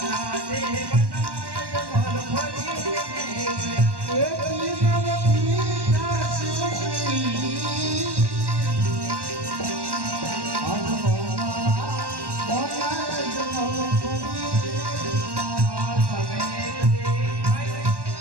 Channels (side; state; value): left; late; 1.1 ms